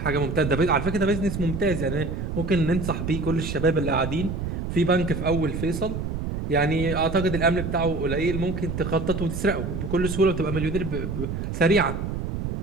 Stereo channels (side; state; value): right; noise; rumble, 4 dB below the sound